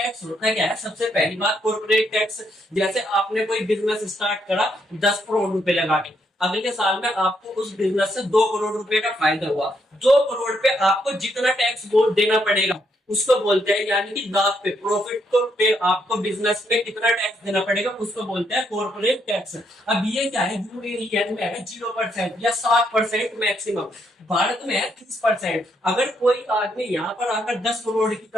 होता है क्या है, सबसे पहली बात कॉर्पोरेट टैक्स, जैसे आपने कोई बिजनेस स्टार्ट करा 10 करोड़ रुपए लगा के, अगले साल में आपको उस बिजनेस से 2 करोड़ रुपए का फायदा हुआ, 2 करोड़ पे आपको जितना टैक्स देना पड़ेगा उसको बोलते हैं, यानी कि लाभ पे, प्रॉफिट को पे आपको बिजनेस पे कितना टैक्स देना पड़ेगा उसको बोलते हैं कॉर्पोरेट टैक्स। अब ये क्या है, यूएई में है 0% या 7% मैक्सिमम, भारत में है 30%। अगर कोई आदमी यहाँ पर आकर 10 करोड़ की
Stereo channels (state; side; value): normal; both; correlation 0.75